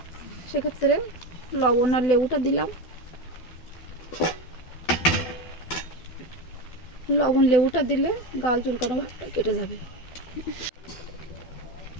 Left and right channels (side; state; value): right; late; 12 ms